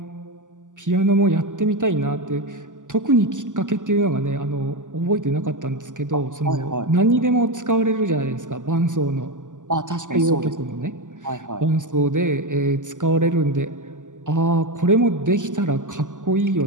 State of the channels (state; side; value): late; left; 0.87 ms